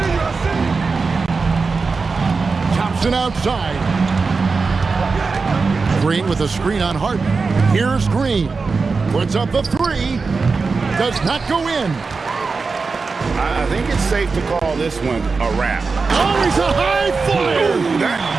Thompson outside. Green with a screen on Harden. Here's Green. Puts up the 3. Does not go in. I think it's safe to call this one a wrap. Oh, he's a high flyer. That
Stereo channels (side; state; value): left; quieter; 4.5 dB